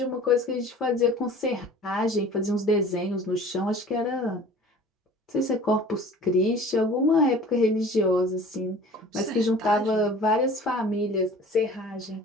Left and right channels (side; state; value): both; normal; correlation 0.45